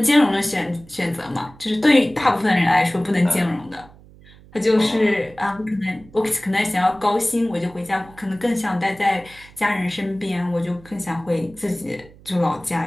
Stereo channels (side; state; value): right; noise; hum, 23 dB below the sound